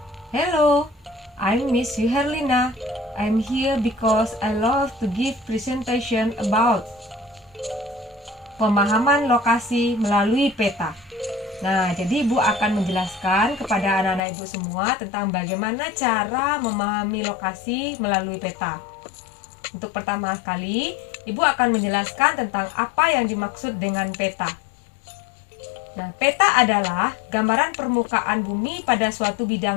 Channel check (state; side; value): drops out; right; at 14.2 s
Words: Hello, I'm Miss Herlina. I'm here because I love to give presentation about pemahaman lokasi melalui peta. Nah, jadi Ibu akan menjelaskan kepada anak-anak Ibu semua tentang bagaimana cara memahami lokasi melalui peta. Untuk pertama kali, Ibu akan menjelaskan tentang apa yang dimaksud dengan peta. Nah, peta adalah gambaran permukaan bumi pada suatu